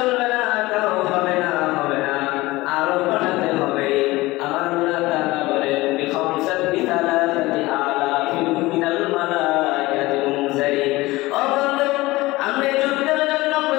না, তাও হবে না, হবে না, আরো পাঠাতে হবে। আমার আল্লাহ তাআলা বলেন বিখামসাতি সালাসাতি আলাফিন মিনাল মালাইকাতি মুনজালিন। ও বন্ধু, আপনি যুদ্ধের জন্য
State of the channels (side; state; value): right; quieter; 19.9 dB